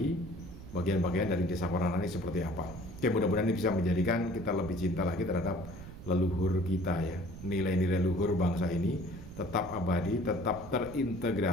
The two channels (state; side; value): noise; right; rumble, 14 dB below the sound